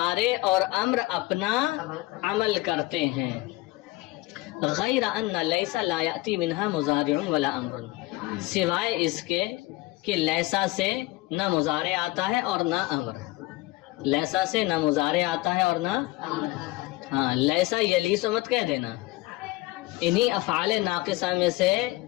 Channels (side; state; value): right; quieter; 20.0 dB